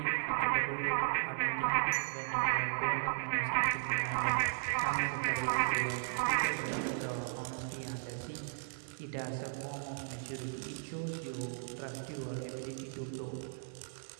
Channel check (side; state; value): left; silent; digital silence